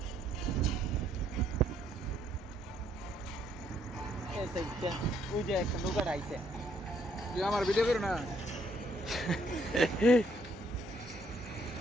ওই যে একটা নৌকার আইছে তুই আমার ভিডিও করো না।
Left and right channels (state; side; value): normal; both; correlation 0.69